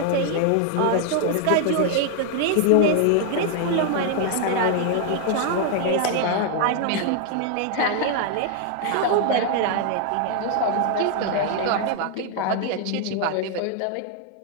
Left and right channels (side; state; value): both; different; correlation 0.01